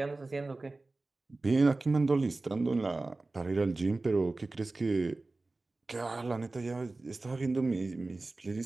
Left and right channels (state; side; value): quieter; left; 3.3 dB